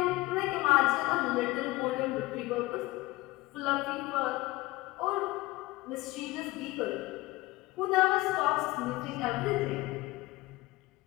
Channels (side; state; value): right; quieter; 19.8 dB